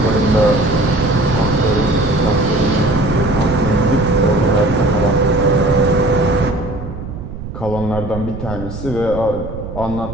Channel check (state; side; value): noise; right; rumble, 10 dB below the sound